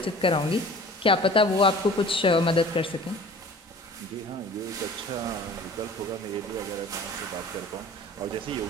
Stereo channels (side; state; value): both; normal; correlation 0.45